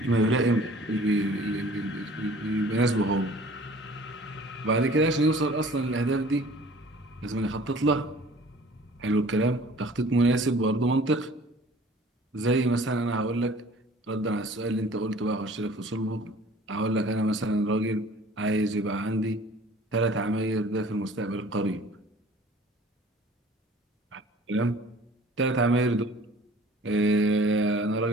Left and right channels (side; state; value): both; normal; correlation 0.49